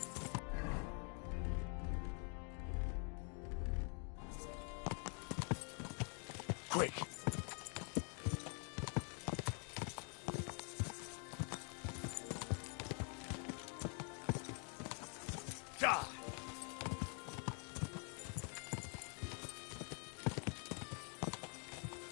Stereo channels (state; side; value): quieter; right; 39.7 dB